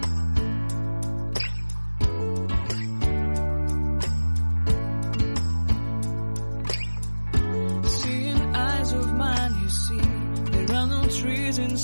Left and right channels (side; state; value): both; inverted; correlation -1.00